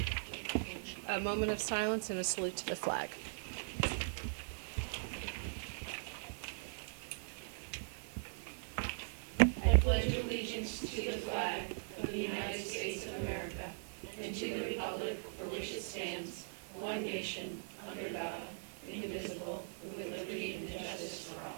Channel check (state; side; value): silent; left; 51 dB below the other